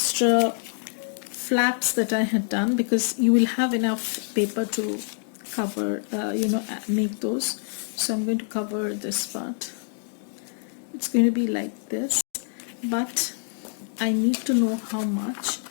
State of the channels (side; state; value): right; silent; 61 dB below the other